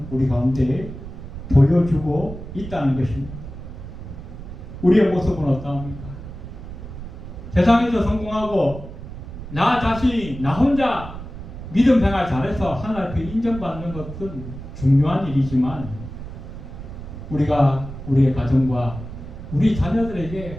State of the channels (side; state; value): right; noise; rumble, 11 dB below the sound